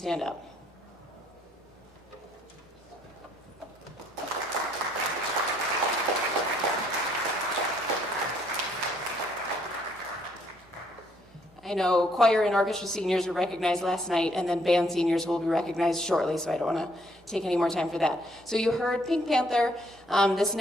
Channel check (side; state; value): both; normal; correlation 0.68